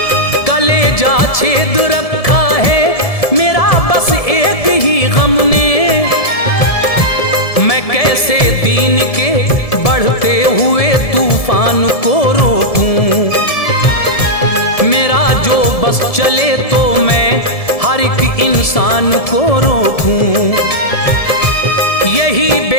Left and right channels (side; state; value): right; late; 1.7 ms